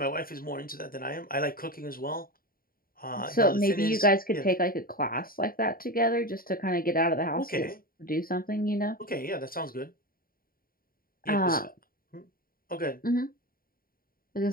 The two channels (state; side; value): late; right; 0.42 ms